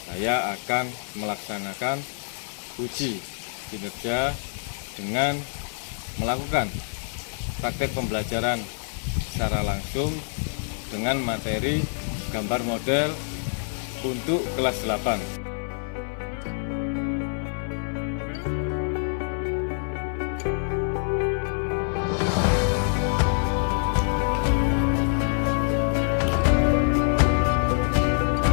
saya akan melaksanakan uji kinerja dengan melakukan praktek pembelajaran secara langsung dengan materi gambar model untuk kelas 8.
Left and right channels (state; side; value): silent; right; 57 dB below the other